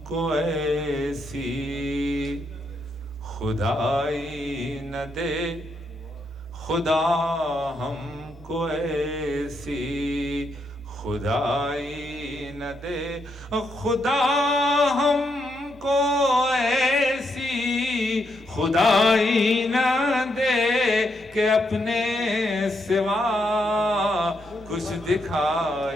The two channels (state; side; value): normal; both; correlation 0.79